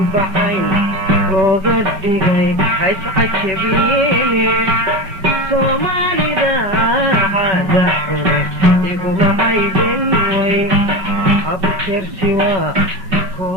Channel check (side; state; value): left; late; 5.3 ms